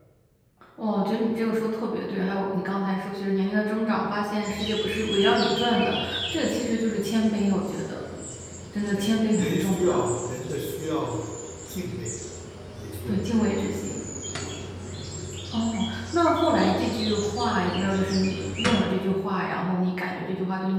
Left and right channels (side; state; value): both; identical; correlation 1.00